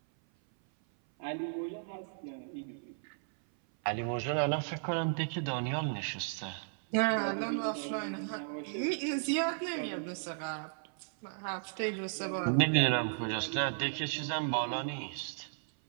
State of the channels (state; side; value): silent; left; 55 dB below the other